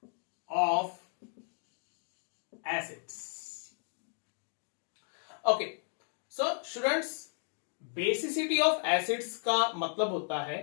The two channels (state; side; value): silent; right; digital silence